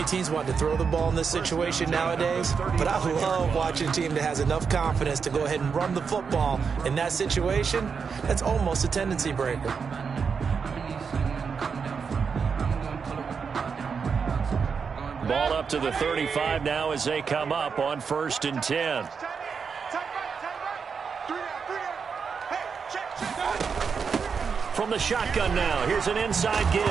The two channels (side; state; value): left; quieter; 5.9 dB